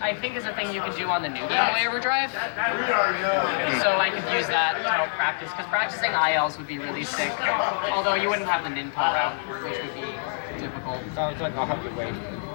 think is a thing you can do on the new Game Boy Overdrive. So I could use that to help practice, because practicing ILs would be really sick. Although you wouldn't have the Ninpo route, which would be difficult. Sounds like I'll have to wait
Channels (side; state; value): right; silent; 61 dB below the other